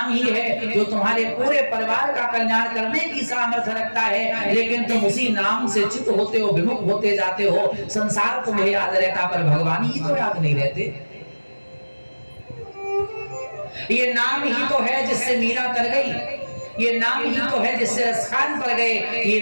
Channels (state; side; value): inverted; both; correlation -1.00